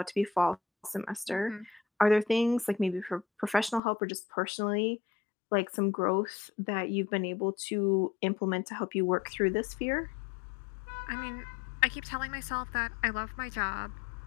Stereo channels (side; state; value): right; drops out; at 3.8 s